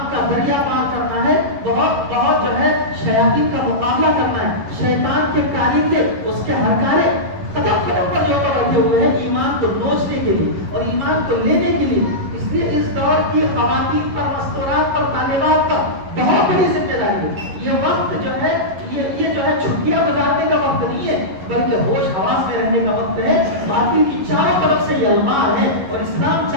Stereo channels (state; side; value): late; left; 11 ms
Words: کا دریا پار کرنا ہے. بہت بہت جو ہے شیاطین کا مقابلہ کرنا ہے. شیطان کے کارندے اس کے ہرکارے قدم قدم پر جو بیٹھے ہوئے ہیں ایمان کو نوچنے کے لیے اور ایمان کو لینے کے لیے. اس لیے اس دور کی خواتین پر، مستورات پر، طالبات پر بہت بڑی ذمہ داری ہے. یہ وقت جو ہے یہ جو ہے چھٹیاں گزارنے کا وقت نہیں ہے، بلکہ ہوش حواس میں رہنے کا وقت ہے. باطل کی چاروں طرف سے یہ المار ہے اور اسلام